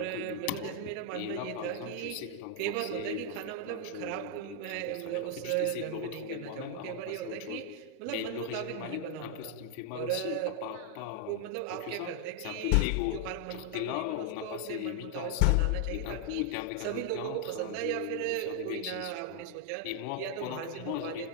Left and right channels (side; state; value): both; different; correlation 0.00